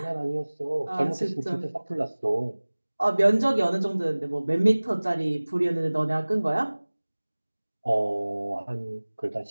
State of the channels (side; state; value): both; inverted; correlation -1.00